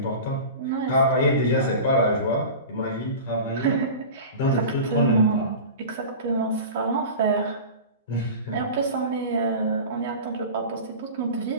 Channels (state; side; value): inverted; both; correlation -0.33